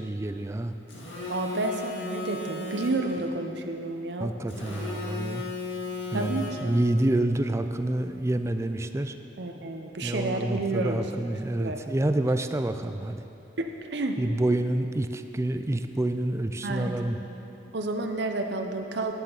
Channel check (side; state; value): both; normal; correlation 0.70